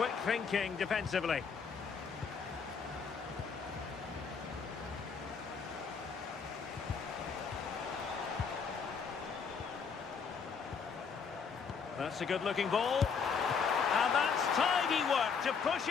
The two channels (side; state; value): right; quieter; 5.9 dB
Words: thinking defensively. That's a good-looking ball. And that's tidy work to push